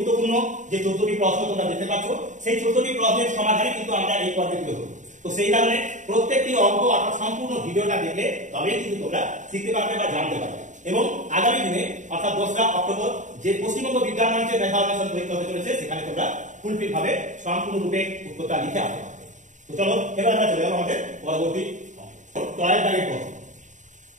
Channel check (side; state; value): left; late; 0.36 ms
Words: যে 14টি প্রশ্ন তোমরা দেখতে পাচ্ছ, সেই 14টি প্রশ্নের সমাধানই কিন্তু আমরা এই পর্বে তুলে ধরব। তো সেই কারণে প্রত্যেকটি অঙ্ক অর্থাৎ সম্পূর্ণ ভিডিওটা দেখলে তবেই কিন্তু তোমরা শিখতে পারবে বা জানতে পারবে। এবং আগামী দিনে অর্থাৎ 2রা অক্টোবর যে পশ্চিমবঙ্গ বিজ্ঞান মঞ্চের মেধা অন্বেষণ পরীক্ষা হতে চলেছে, সেখানে তোমরা ফুলফিল ভাবে সম্পূর্ণ রূপে উত্তরটা লিখে আসতে পারবে। তো চলো এবার আমরা চলে যাবো আমাদের পরবর্তী টয়ের দাগের প্রশ্ন।